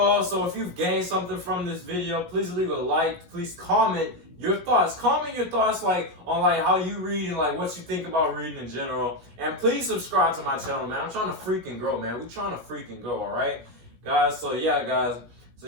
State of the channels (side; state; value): left; late; 17 ms